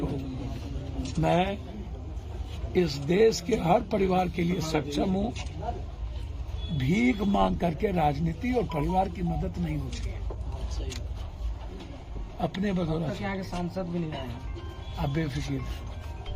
हो, मैं इस देश के हर परिवार के लिए सक्षम हूँ। भीख मांग करके राजनीति और परिवार की मदद नहीं होती है। अपने बदौलत यहाँ के सांसद भी नहीं आए, आप बेफिक्र।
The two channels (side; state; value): both; identical; correlation 1.00